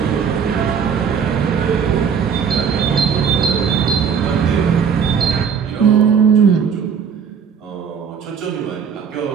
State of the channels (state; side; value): quieter; left; 6.9 dB